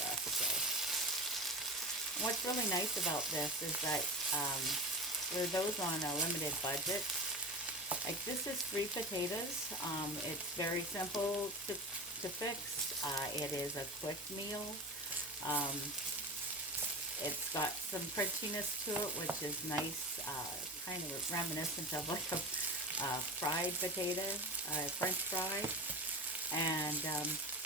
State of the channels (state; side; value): normal; both; correlation 0.27